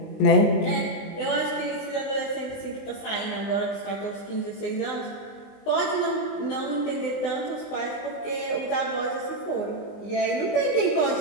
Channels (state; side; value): late; right; 20 ms